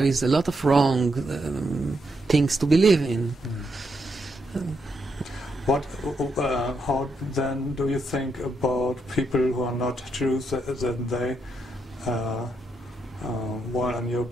is a lot of wrong things to believe in. How then do you think about people who are not Jews, that they, while in your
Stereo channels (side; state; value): both; normal; correlation 0.80